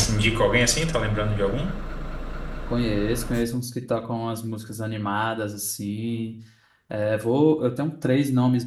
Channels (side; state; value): both; identical; correlation 1.00